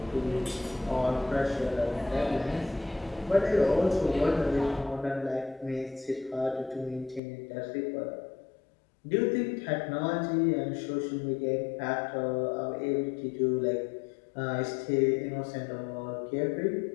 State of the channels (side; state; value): right; drops out; at 7.2 s